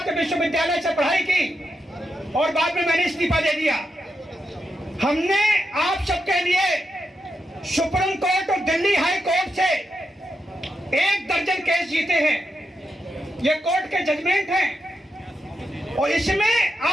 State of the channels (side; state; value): both; normal; correlation 0.85